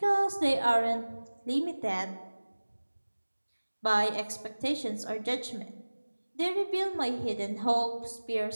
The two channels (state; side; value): inverted; both; correlation -1.00